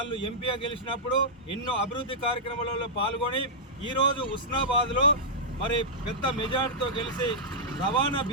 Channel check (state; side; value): normal; both; correlation -0.11